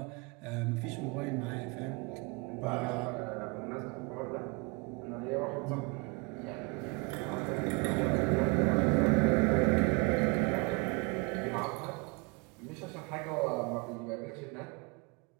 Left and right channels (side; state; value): left; quieter; 29.9 dB